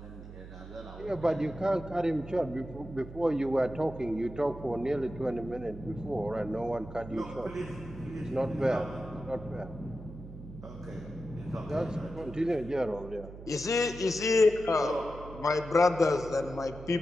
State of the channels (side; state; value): right; noise; hum, 14 dB below the sound